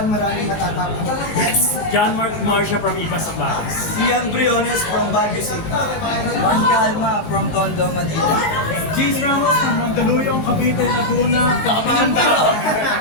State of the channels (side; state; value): right; late; 19 ms